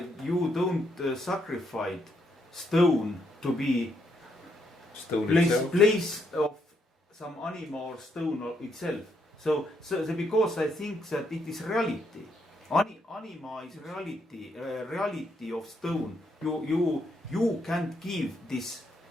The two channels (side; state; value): both; normal; correlation 0.76